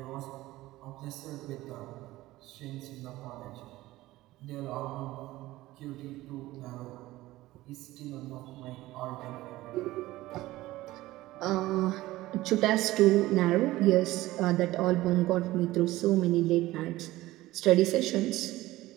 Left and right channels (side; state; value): left; quieter; 17.3 dB